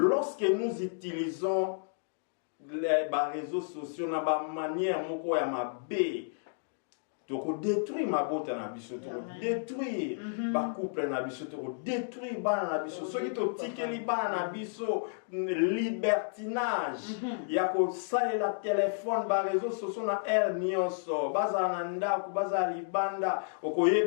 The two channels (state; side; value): silent; right; digital silence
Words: nous utilisons les réseaux sociaux na ba manière moko ya mabe donc détruire ma beauté na biso to détruire ba couple na biso to détruire bana na biso so ki to tikeli bana na biso libertinage ya ko salela téléphone ba réseaux sociaux na nyonso baza na ndako baza libanda